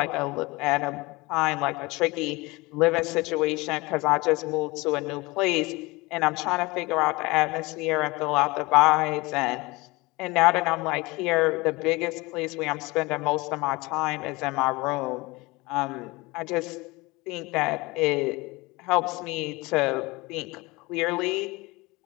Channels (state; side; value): quieter; right; 23.2 dB